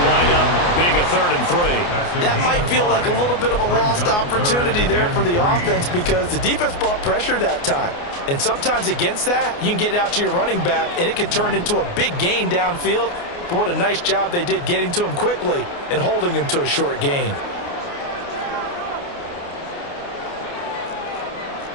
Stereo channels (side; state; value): right; late; 29 ms